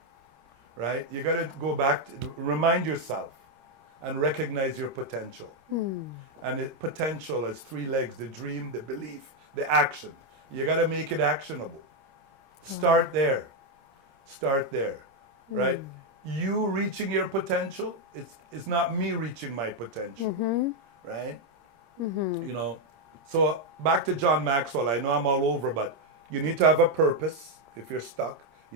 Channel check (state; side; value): late; left; 26 ms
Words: right? You got to go back to remind yourself and recognize your potential. And potential has three legs: the dream, the belief, the action. You got to make it actionable. Start there. Start there, right? You reaching your potential, it's not me reaching my potential, right? You know, so back to John Maxwell. I know I'm all over, but you need to have a purpose. If you're stuck, you